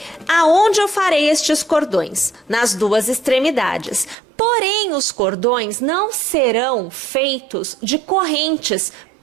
aonde eu farei estes cordões? Nas duas extremidades. Porém, os cordões não serão feitos de correntes,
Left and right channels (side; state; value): left; drops out; at 4.2 s